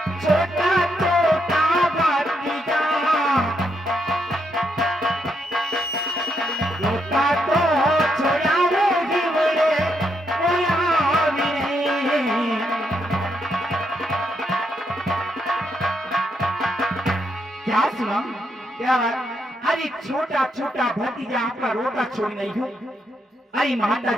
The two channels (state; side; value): normal; both; correlation 0.78